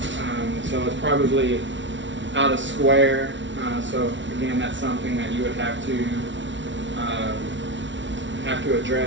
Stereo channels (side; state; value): left; late; 0.55 ms